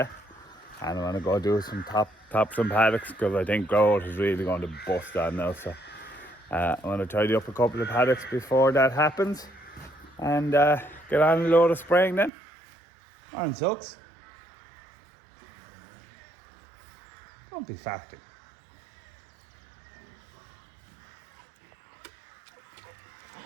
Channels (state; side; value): drops out; left; at 12.3 s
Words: And I want to go do some top some paddocks because I think growth is really going to bust on now. So I want to tidy up a couple of paddocks before that happens. And get on a load of spraying then. Morning, Sucks. Don't be farting.